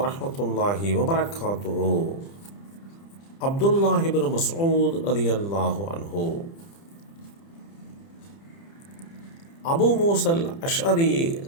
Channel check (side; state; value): right; late; 30 ms